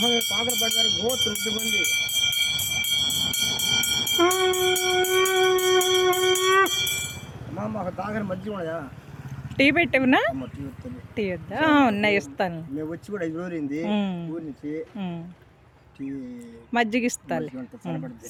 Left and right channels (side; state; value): both; identical; correlation 1.00